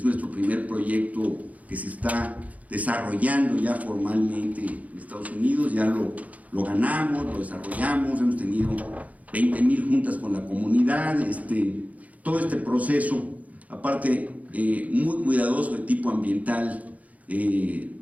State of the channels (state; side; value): late; left; 0.072 ms